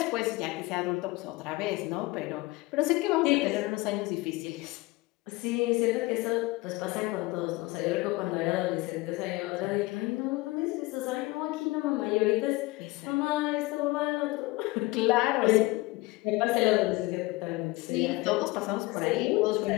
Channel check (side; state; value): right; quieter; 21.2 dB